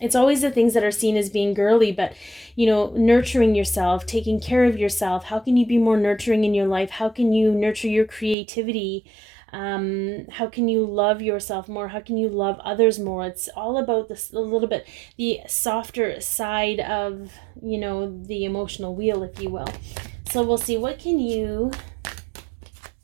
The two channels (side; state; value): left; drops out; at 8.3 s